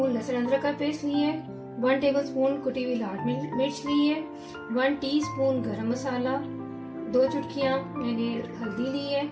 लहसुन अदरक का पेस्ट ली है, 1 टेबलस्पून कुटी हुई लाल मिर्च ली है, 1 टीस्पून गरम मसाला, 2 चुटकियाँ मैंने हल्दी ली है,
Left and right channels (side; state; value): both; identical; correlation 1.00